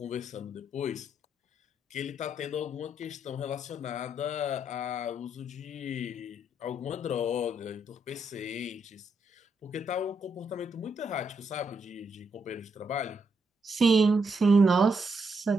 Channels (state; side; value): normal; both; correlation 0.78